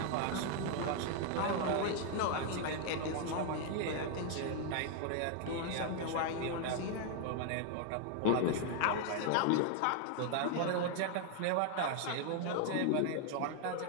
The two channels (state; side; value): different; both; correlation 0.00